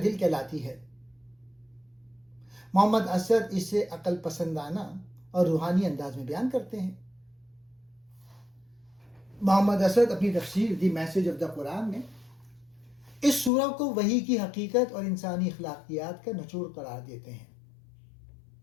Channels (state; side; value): drops out; right; at 13.5 s